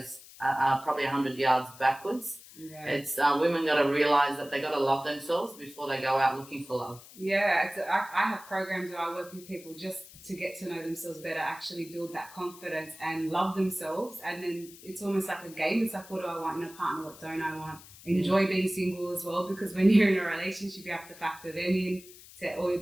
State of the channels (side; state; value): left; noise; hiss, 19 dB below the sound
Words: probably 100 yards backwards. Yeah. It's women got to realize that they got to love themselves before they go out looking for love. Yeah, I have programs where I work with people just to get to know themselves better, actually build that confidence and love themselves. And then it's almost like a game. It's like, what do I want in a partner? What don't I want? Enjoy being single as well, because when you're in a relationship, you have to factor them in to all your